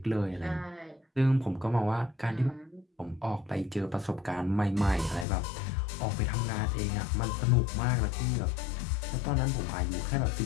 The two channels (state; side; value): drops out; right; at 5.2 s